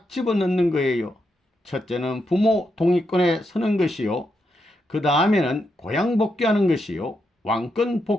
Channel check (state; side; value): normal; both; correlation 0.83